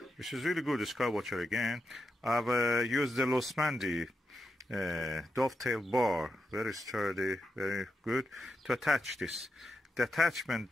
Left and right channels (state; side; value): normal; both; correlation 0.86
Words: which is really good. The SkyWatcher again. I've used the Losmandy dovetail bar, very sturdy, very good, to attach this. The attachment,